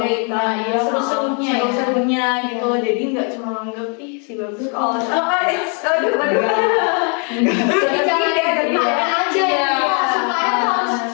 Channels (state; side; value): quieter; right; 38.4 dB